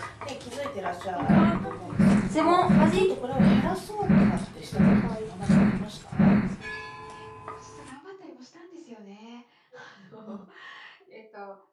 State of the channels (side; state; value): both; identical; correlation 1.00